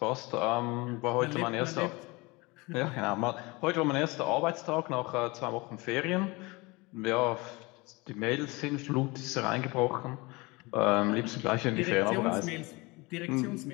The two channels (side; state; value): right; quieter; 24.6 dB